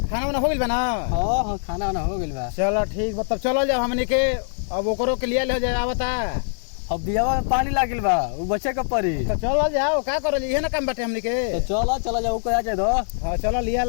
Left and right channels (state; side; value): silent; right; digital silence